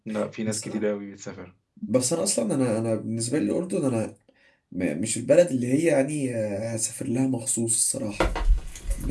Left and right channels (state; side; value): identical; both; correlation 1.00